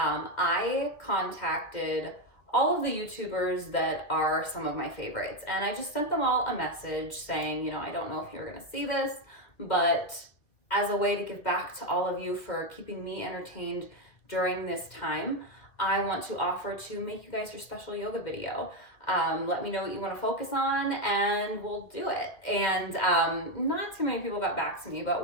contacted all of the YouTubers that are some of my favorites, and I just sent them all a message saying, I don't know if you're going to see this, but as a way to give back to all of you for keeping me entertained during this time, I want to offer to make you guys your special yoga video. Let me know what you want to focus on and we'll do it. And not too many people got back to me,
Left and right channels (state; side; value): late; right; 2.3 ms